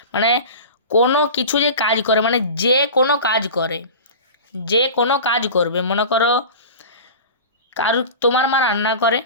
মানে কোনো কিছু যে কাজ করে, মানে যে কোনো কাজ করে, যে কোনো কাজ করবে। মনে করো তোমার মা রান্না করে,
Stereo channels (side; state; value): both; inverted; correlation -0.33